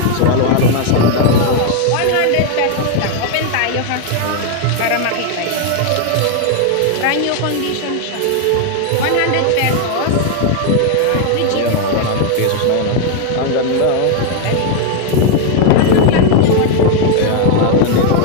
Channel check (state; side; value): different; both; correlation 0.00